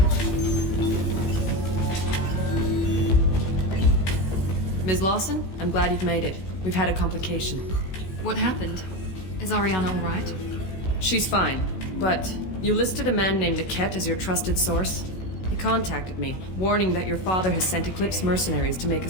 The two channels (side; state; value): right; late; 16 ms